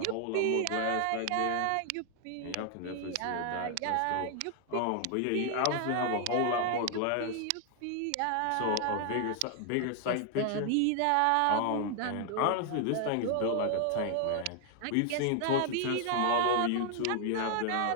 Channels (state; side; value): different; both; correlation 0.00